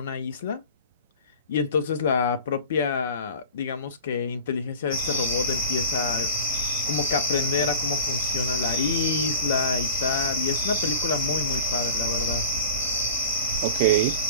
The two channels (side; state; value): both; inverted; correlation -0.37